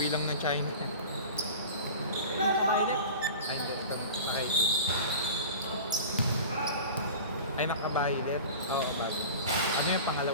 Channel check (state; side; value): inverted; both; correlation -0.36